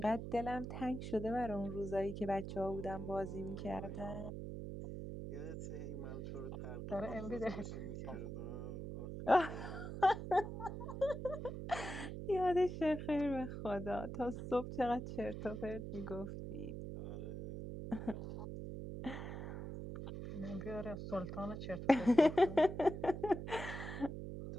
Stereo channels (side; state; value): right; noise; hum, 6 dB below the sound